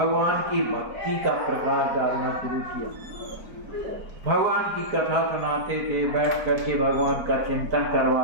की भक्ति का प्रकाश डालना शुरू किया। भगवान की कथा सुनाते थे, बैठ करके भगवान का चिंतन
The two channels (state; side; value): late; left; 4.5 ms